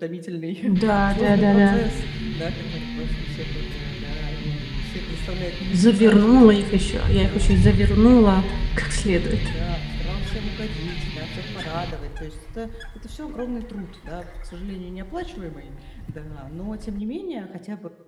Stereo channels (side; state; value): both; identical; correlation 1.00